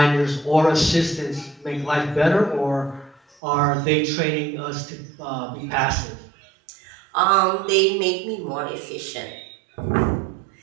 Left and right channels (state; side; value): drops out; left; at 3.4 s